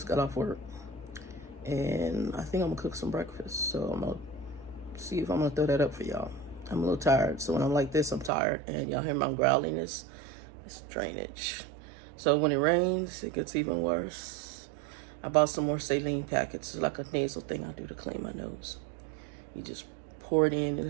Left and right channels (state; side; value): drops out; left; at 8.3 s